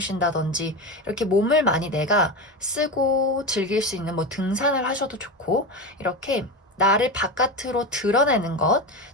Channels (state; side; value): normal; both; correlation 0.21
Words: 이렇게 몸을 많이 내가 쓰고 즐길 수 있는 뭐 등산을 하셔도 좋고, 이렇게 나를 바깥으로 드러내는 것,